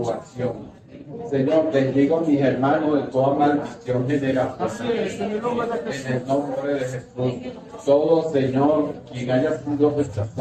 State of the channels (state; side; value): identical; both; correlation 1.00